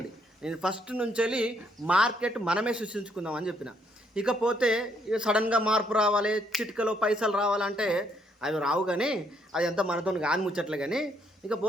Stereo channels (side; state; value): both; normal; correlation 0.71